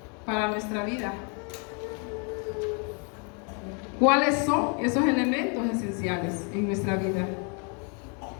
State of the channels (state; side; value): quieter; right; 36.9 dB